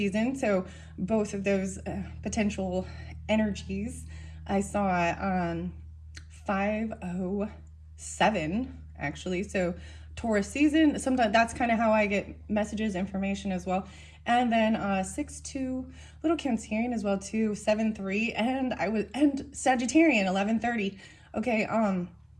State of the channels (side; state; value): both; identical; correlation 1.00